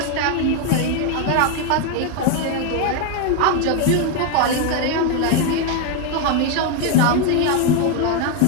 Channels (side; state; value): both; different; correlation 0.01